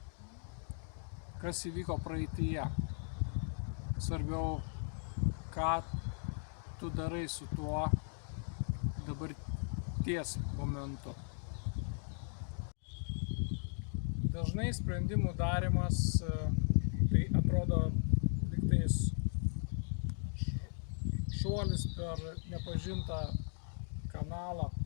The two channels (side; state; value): right; silent; 53 dB below the other